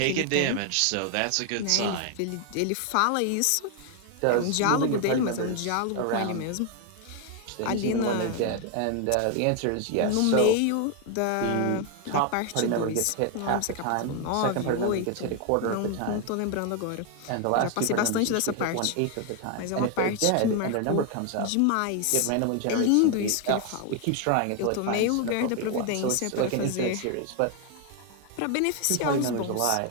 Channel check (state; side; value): different; both; correlation 0.01